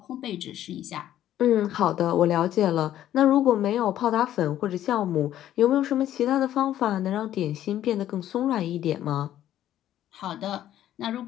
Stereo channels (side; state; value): right; quieter; 12.1 dB